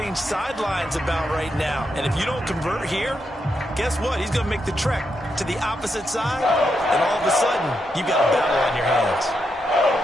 sidelines about right now. And if you don't convert here, guess what? He's going to make the trek to the opposite side, and all of a sudden, you've got a battle on your hands.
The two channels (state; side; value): normal; both; correlation 0.83